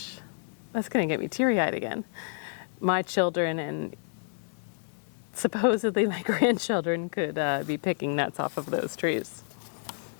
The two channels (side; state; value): right; silent; digital silence